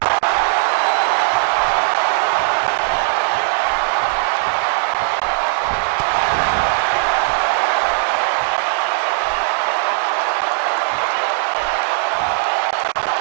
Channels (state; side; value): silent; left; digital silence